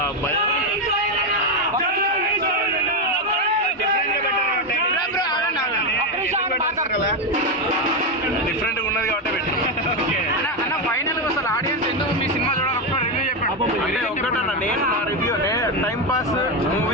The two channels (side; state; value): both; normal; correlation 0.08